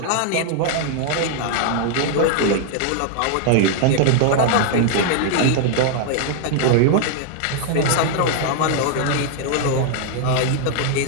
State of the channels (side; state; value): both; different; correlation 0.00